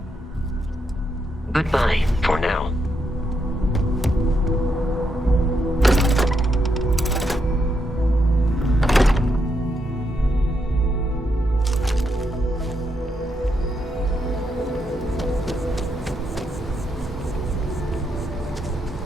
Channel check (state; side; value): normal; both; correlation 0.80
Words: Goodbye for now.